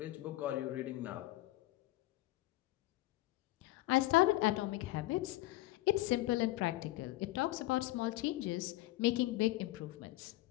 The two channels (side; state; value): right; quieter; 17.7 dB